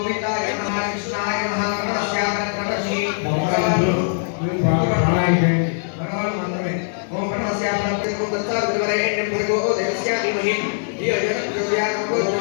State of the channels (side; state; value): right; silent; digital silence